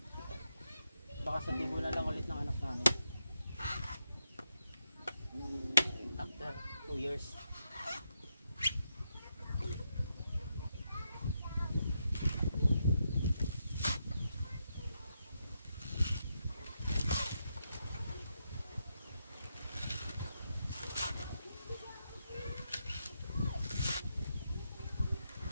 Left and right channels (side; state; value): both; inverted; correlation -0.83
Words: Baka sa tibo na lang ulit ng anak namin after 2 years.